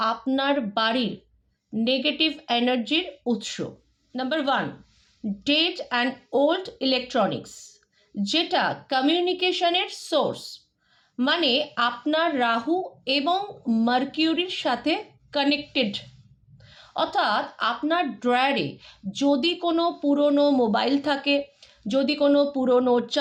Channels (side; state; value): both; identical; correlation 1.00